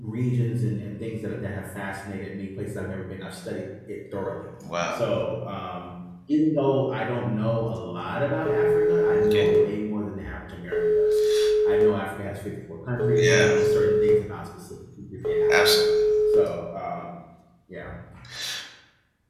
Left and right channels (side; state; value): both; identical; correlation 1.00